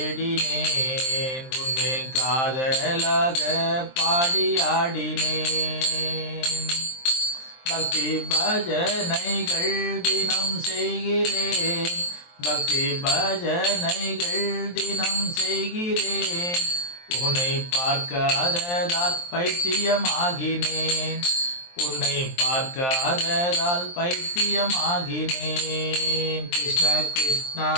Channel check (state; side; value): late; right; 23 ms